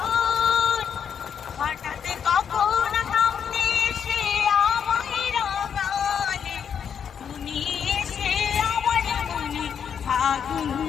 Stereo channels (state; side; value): quieter; right; 7.6 dB